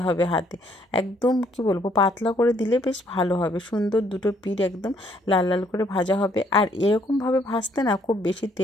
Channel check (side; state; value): both; normal; correlation 0.67